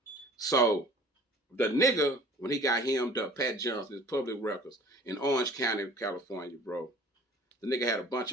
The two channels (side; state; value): both; normal; correlation 0.48